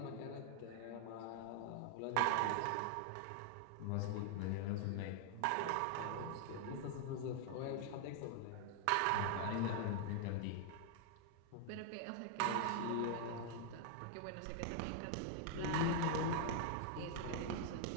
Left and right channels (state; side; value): different; both; correlation 0.00